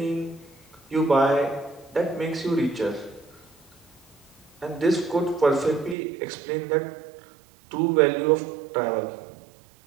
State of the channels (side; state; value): left; drops out; at 6.0 s